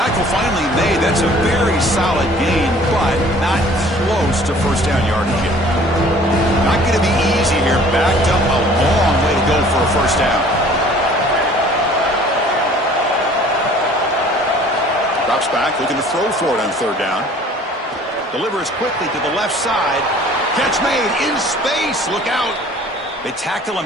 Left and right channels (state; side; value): normal; both; correlation 0.52